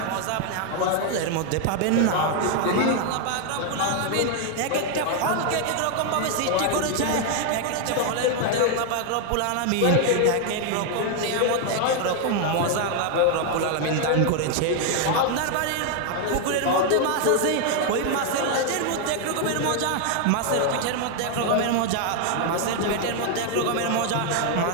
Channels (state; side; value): different; both; correlation 0.00